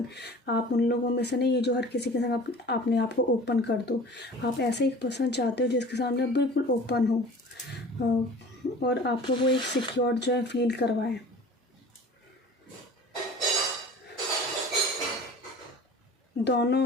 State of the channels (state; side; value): normal; both; correlation 0.42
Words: आप उन लोगों में से नहीं है जो हर किसी के साथ अपने आप को ओपन कर दो। आप ऐसे एक पर्सन चाहते हो जिसके सामने बिल्कुल ओपन हो, और आपको वो एक सिक्योर जो है फील करवाए।